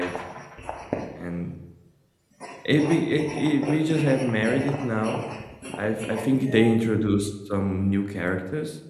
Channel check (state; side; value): identical; both; correlation 1.00